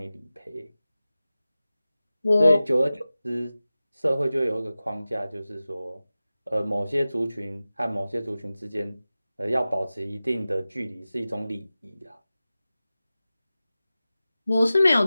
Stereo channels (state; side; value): inverted; both; correlation -0.95